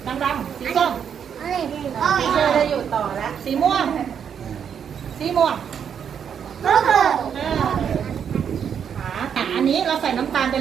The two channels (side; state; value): left; quieter; 7.9 dB